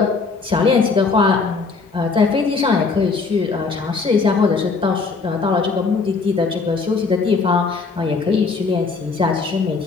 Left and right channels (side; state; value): right; quieter; 4.5 dB